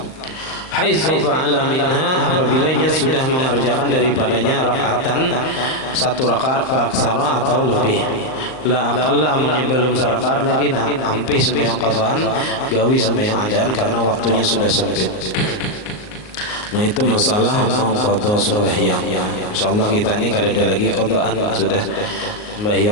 Haitsu fa'ala minha, apabila ia sudah mengerjakan daripadanya rakaatan, satu rakaat fa'aksara atau lebih, la aqalla, amunnya belum sarakaat lagi, nah ampih sembahyang qada'an, gawi sembahyang adaan karena waktunya sudah sempit. Nah itu masalah mengqadha sembahyang. Insyaallah kita ini kada ada lagi qada'an, sudah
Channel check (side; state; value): right; late; 38 ms